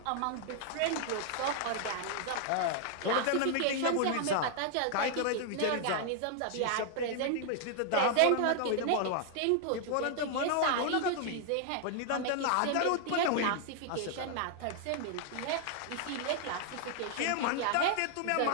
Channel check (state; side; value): different; both; correlation 0.00